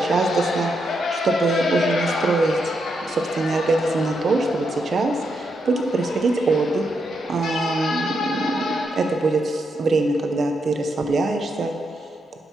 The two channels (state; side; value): normal; both; correlation 0.81